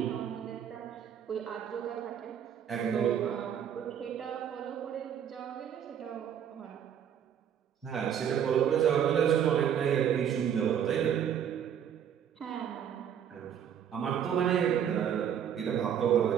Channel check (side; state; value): left; quieter; 8.9 dB